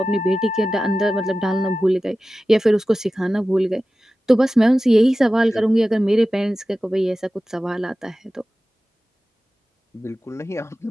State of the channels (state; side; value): normal; both; correlation 0.95